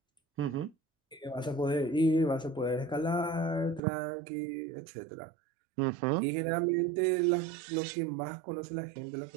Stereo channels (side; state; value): left; drops out; at 3.8 s